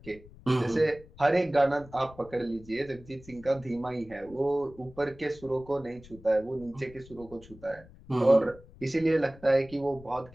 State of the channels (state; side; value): noise; left; rumble, 21 dB below the sound